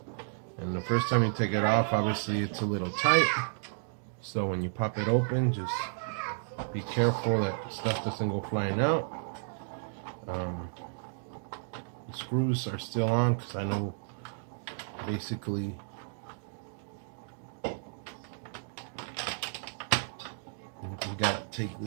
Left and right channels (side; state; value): left; silent; digital silence